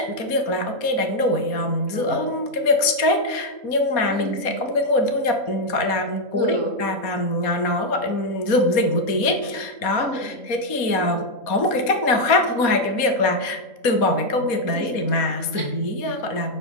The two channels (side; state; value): right; late; 4.1 ms